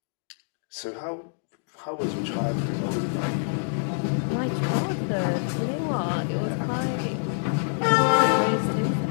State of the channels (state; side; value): silent; right; digital silence